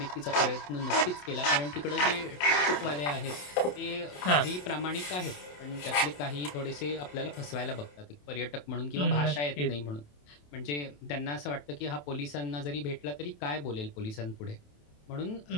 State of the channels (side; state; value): right; late; 27 ms